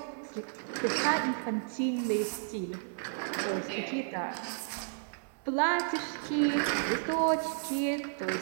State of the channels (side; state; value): left; silent; 56 dB below the other